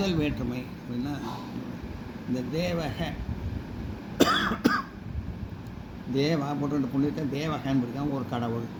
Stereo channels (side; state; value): both; identical; correlation 1.00